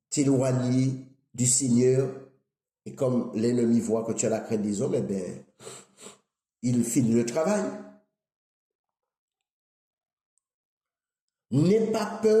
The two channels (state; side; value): identical; both; correlation 1.00